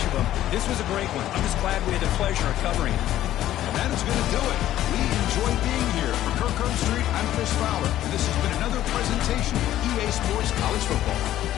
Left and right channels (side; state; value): right; quieter; 13.1 dB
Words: of them. This was a great one. I'm just glad we had the pleasure of covering it. And that is going to do it. We enjoyed being here. For Kirk Street, I'm Chris Fowler, and this has been another presentation of EA Sports College Football.